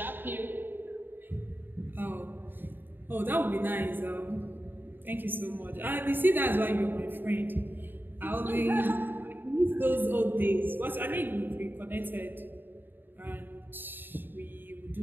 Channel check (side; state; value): left; late; 0.094 ms